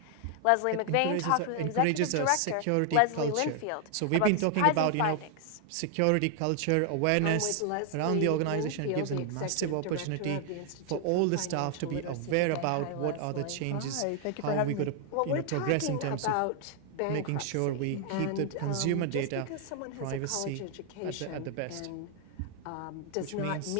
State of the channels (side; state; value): both; different; correlation 0.00